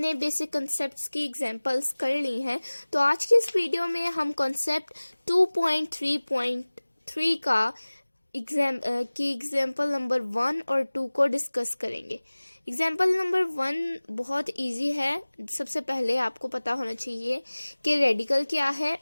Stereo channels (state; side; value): inverted; both; correlation -1.00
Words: बेसिक कॉन्सेप्ट्स की एग्जाम्पल्स कर ली हैं। तो आज की इस वीडियो में हम कॉन्सेप्ट 2.3.3 का एग्जाम्पल नंबर 1 और 2 को डिस्कस करेंगे। एग्जाम्पल नंबर 1 बहुत इजी है। सबसे पहले आपको पता होना चाहिए कि रेडिकल क्या है